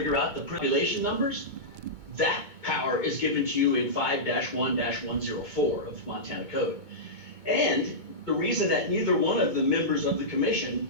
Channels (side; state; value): left; late; 2.2 ms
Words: out the population numbers. That power is given to you in 5-1-104 of Montana Code. And the reason that neither one of the members of the commission